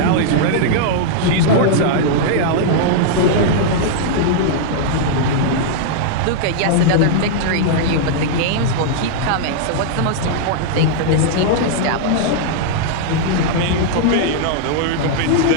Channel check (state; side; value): different; both; correlation -0.01